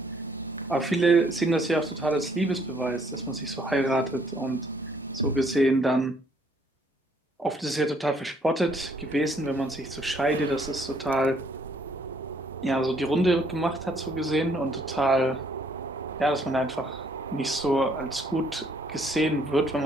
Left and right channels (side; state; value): both; normal; correlation 0.66